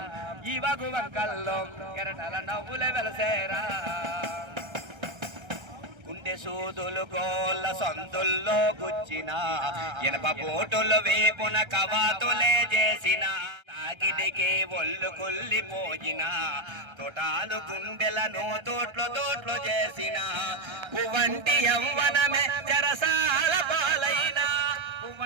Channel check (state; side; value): late; left; 1.3 ms